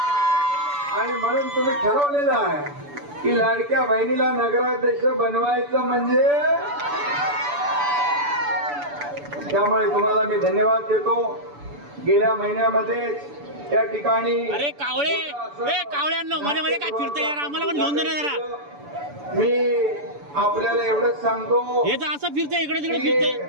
आणि म्हणून तुम्ही ठरवलेलं आहे की लाडक्या बहिणीला नगराध्यक्ष बनवायचं म्हणजे। त्यामुळे तुम्हाला मी धन्यवाद देतो। गेल्या महिन्यामध्ये या ठिकाणी अरे कावळ्यांनो मध्ये मध्ये काय फिरतंय यार, आम्हाला पण घेऊन दे जरा। मी आपल्याला एवढंच सांगतो, हे तर असं फिरतंय, इकडे तिकडे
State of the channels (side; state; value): left; late; 6.9 ms